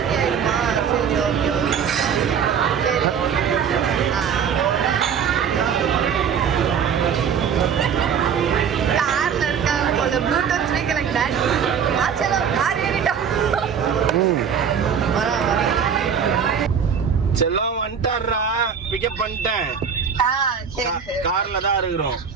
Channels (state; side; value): quieter; left; 7.3 dB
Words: ப்ளூடூத் ஸ்பீக்கர் கார் ஏறிட்டோம். செல்லம் வந்துட்டாரா? பிக்கப் பண்ணிட்டேன். கார்ல தான் இருக்கிறோம்.